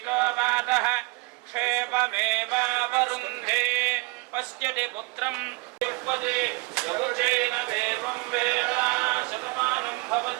वातः क्षेममेवावरुन्धे पश्यति पुत्रं युष्पति यवचेन देवं वेदा शतमानं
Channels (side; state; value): left; quieter; 26.7 dB